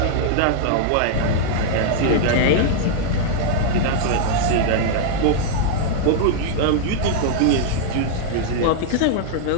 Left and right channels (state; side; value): different; both; correlation -0.01